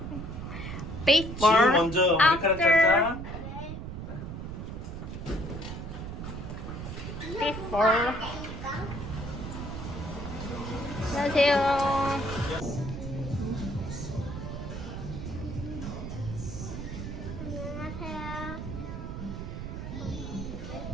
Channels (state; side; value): noise; right; rumble, 7 dB below the sound